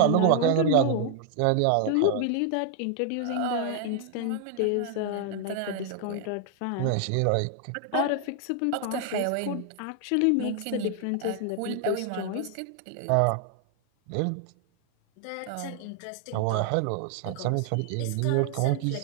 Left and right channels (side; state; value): both; different; correlation 0.00